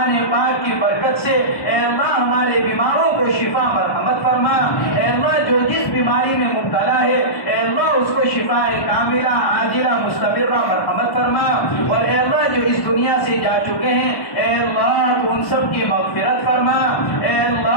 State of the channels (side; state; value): right; late; 1.2 ms